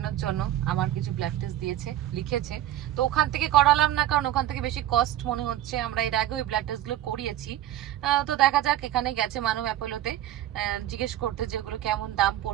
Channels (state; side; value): quieter; left; 13.1 dB